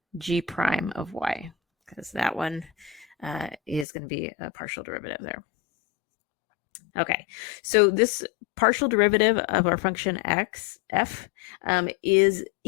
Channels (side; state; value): right; drops out; at 3.9 s